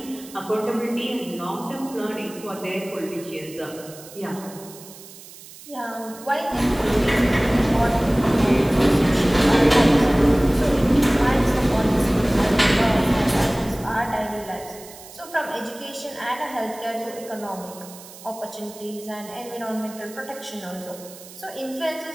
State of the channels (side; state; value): right; noise; hiss, 18 dB below the sound